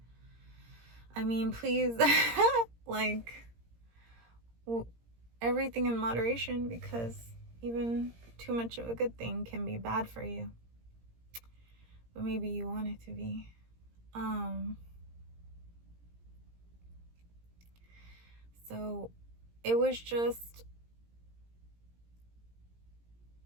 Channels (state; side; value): late; left; 17 ms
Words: I mean, please, like, everything in moderation, because even too much of a good thing can be bad for you. But maybe you want it to be. So it was just